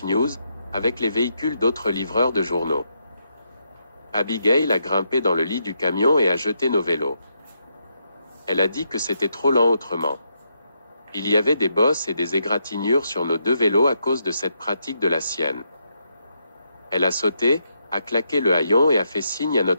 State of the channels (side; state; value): both; inverted; correlation -0.80